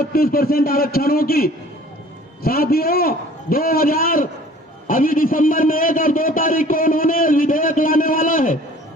आरक्षणों की, साथियों 2000 अभी दिसंबर में 1 और 2 तारीख को उन्होंने विधेयक लाने वाला है।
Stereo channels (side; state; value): both; normal; correlation 0.50